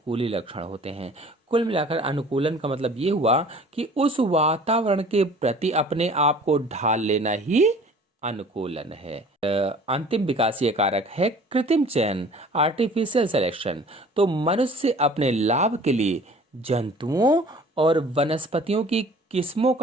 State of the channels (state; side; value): normal; both; correlation 0.48